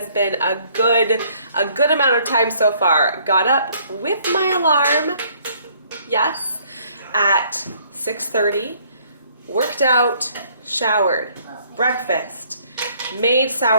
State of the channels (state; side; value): inverted; both; correlation -0.63